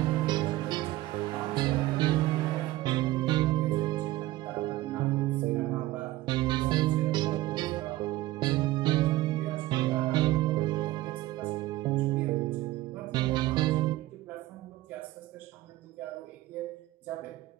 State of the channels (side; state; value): left; quieter; 17.0 dB